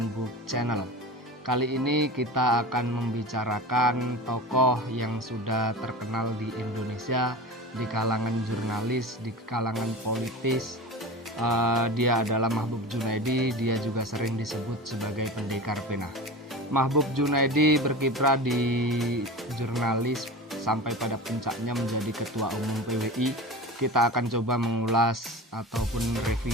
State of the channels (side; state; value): both; normal; correlation 0.31